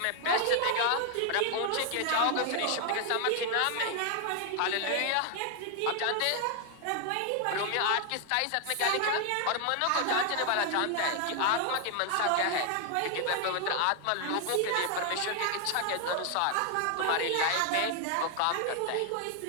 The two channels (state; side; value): different; both; correlation 0.00